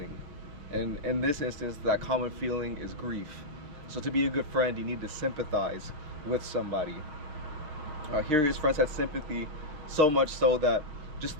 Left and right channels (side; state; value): left; late; 6.5 ms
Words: and in this instance, that common feeling is grief. So to be a good friend, you need to sympathize with somebody. Here his friends had sympathy, so much so that just